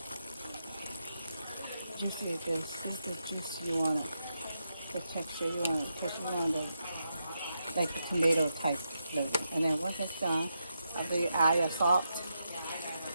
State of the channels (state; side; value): inverted; both; correlation -0.84